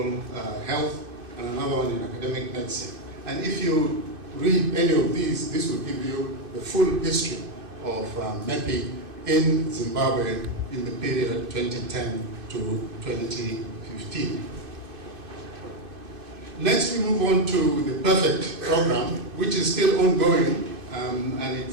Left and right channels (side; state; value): left; late; 2.5 ms